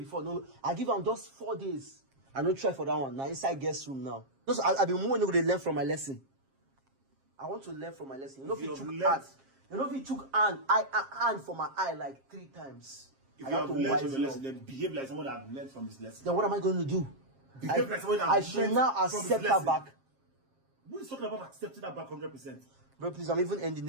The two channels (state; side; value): late; left; 7.5 ms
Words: no, I give them just 4 days. I don't try for that one. Now inside guest room now. Just I've been more to learn from my lesson. I want to learn from my lesson. You know if you took hand. You know if you took hand for my eye like 3 times. If you have learned from your lesson, then behave like someone that have learned from his lesson. Then what am I going to do? Behave like someone that I should now accept her back. Who is talking about accepting that back 100%? Bro, please, I'm even ending